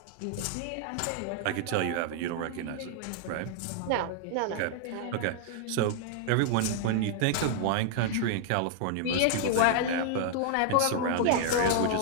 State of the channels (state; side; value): different; both; correlation -0.01